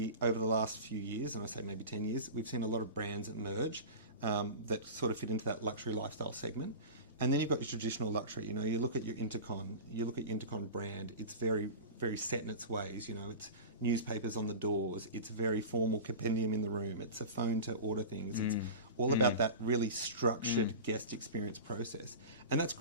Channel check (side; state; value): both; inverted; correlation -0.31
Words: over the last few years, and I say maybe 10 years, we've seen a lot of brands emerge that sort of fit into that luxury lifestyle segment. And then you've got your traditional luxury. You look at your Intercon brand. It's very, very set in its ways. It's newspapers on the doors. It's very formal compendium in the room. It's a phone to order things. It's all about that really structured guest experience process. And that's